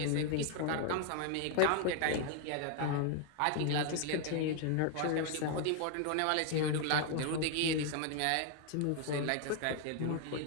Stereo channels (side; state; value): both; different; correlation 0.00